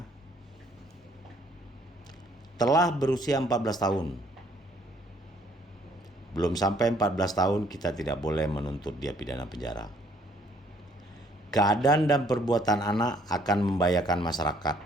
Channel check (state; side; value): normal; both; correlation 0.63